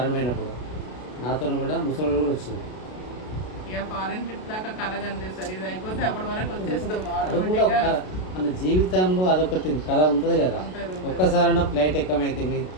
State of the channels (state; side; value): late; right; 32 ms